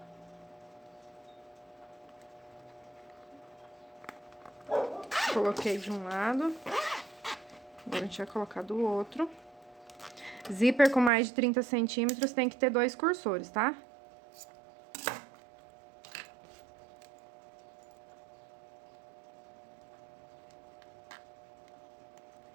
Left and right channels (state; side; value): drops out; left; at 11.1 s